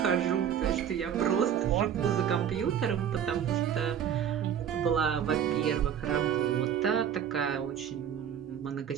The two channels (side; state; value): left; quieter; 9.0 dB